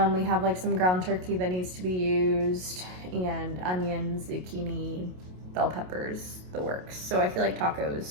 We have like some ground turkey that needs to be used, and onions, zucchini, bell peppers, the works. So I feel like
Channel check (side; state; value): left; late; 27 ms